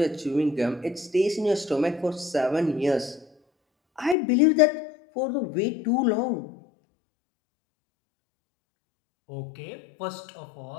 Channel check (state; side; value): drops out; right; at 4.2 s